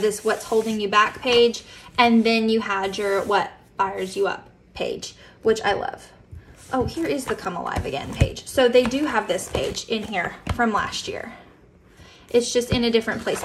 this What's Holding You Back page, and then you had your What Fires You Up page, which I love. Oh, here is the Come Alive Again page. So they do have this page in here from last year. It's just in a different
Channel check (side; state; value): both; identical; correlation 1.00